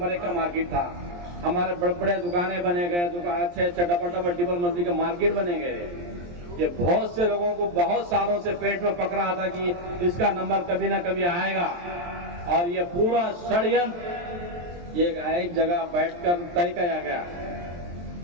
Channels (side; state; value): left; late; 23 ms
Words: 1 का मार्केट था। हमारे बड़े बड़े दुकानें बने गए, अच्छे डबल मंजिल के मार्केट बने गए। ये बहुत से लोगों को बहुत सालों से पेट में पक रहा था कि इसका नंबर कभी ना कभी आएगा। और ये पूरा षड्यंत्र ये एक जगह बैठकर तय किया गया।